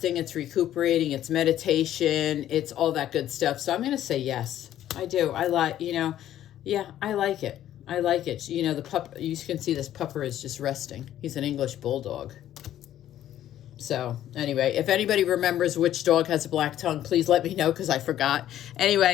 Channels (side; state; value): right; quieter; 12.1 dB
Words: it's recuperating, it's meditation, it's all that good stuff. So I'm going to say yes. I do. I like, yeah, I like it. I like it. The pup, you can see this pupper is just resting. He's an English bulldog. So anyway, if anybody remembers which dog has a black tongue, please let me know because I forgot.